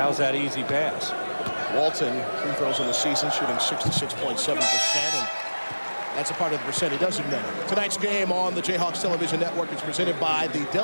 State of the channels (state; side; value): inverted; both; correlation -1.00